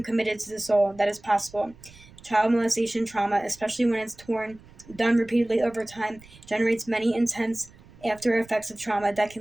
committed to the soul that is possible. Child molestation trauma, especially when it's done repeatedly over time, generates many intense after effects of trauma that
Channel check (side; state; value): right; noise; rumble, 23 dB below the sound